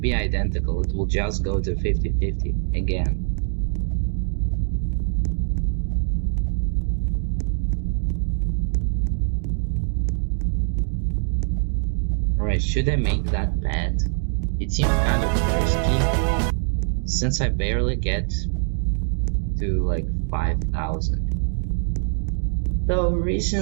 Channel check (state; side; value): silent; left; 56 dB below the other